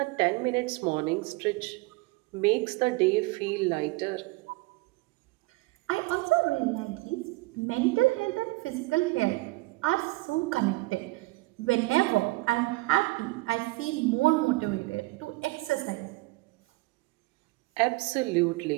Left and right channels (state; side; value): quieter; left; 22.4 dB